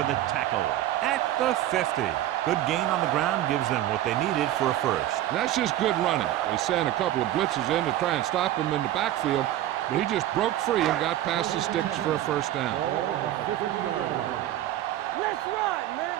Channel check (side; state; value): left; quieter; 13.4 dB